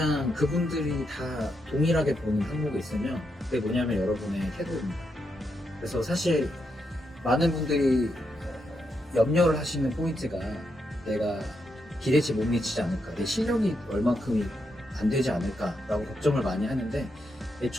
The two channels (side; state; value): both; normal; correlation 0.82